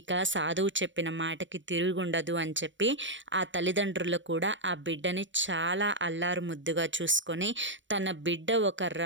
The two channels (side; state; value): left; late; 0.54 ms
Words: సాధువు చెప్పిన మాటకి తిరుగుండదు అని చెప్పి ఆ తల్లిదండ్రులు కూడా ఆ బిడ్డని చాలా అల్లారు ముద్దుగా చూసుకొని, తన బిడ్డ ఒక